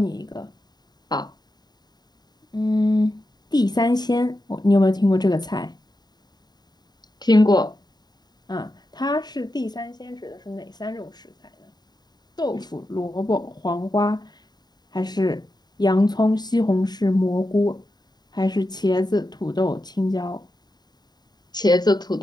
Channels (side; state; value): right; late; 0.20 ms